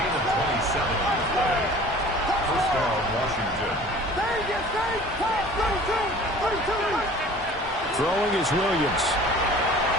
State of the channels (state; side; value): normal; both; correlation 0.46